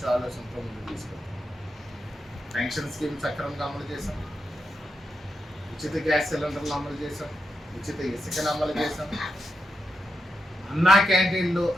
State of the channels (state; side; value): normal; both; correlation 0.85